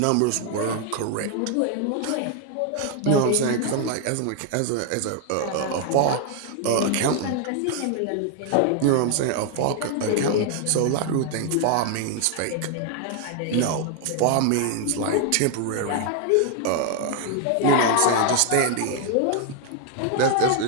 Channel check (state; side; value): different; both; correlation 0.00